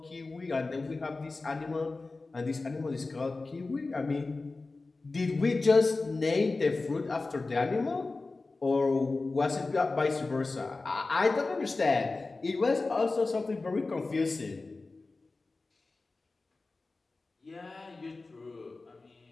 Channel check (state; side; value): quieter; right; 3.5 dB